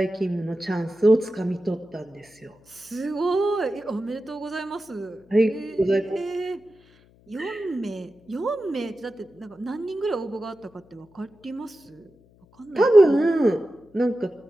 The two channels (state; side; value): noise; left; hum, 29 dB below the sound